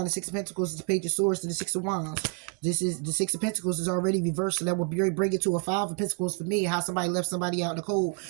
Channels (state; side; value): quieter; left; 34.8 dB